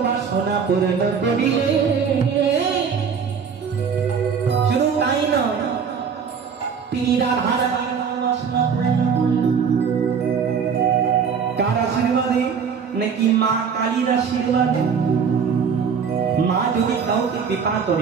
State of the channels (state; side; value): quieter; left; 6.4 dB